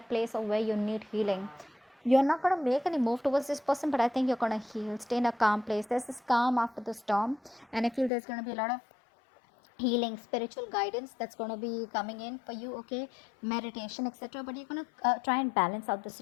place of where you need healing. You're not going to make any move towards this person, but I think you're going to heal, stay in a calm place. There's this calm after the storm, and I feel there's going to be a lot of healing, spiritual guidance that's going to be coming in for you, okay, meditation, etc. But you're going to try and balance out the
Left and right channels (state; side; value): drops out; right; at 8.1 s